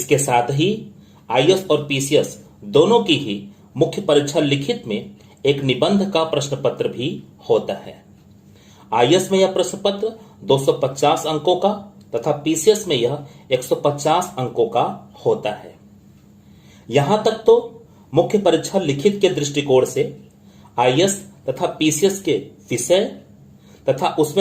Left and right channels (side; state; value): both; identical; correlation 1.00